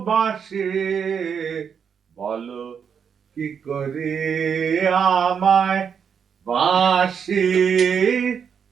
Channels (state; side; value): quieter; left; 7.1 dB